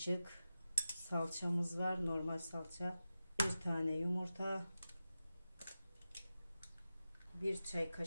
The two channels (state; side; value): inverted; both; correlation -0.92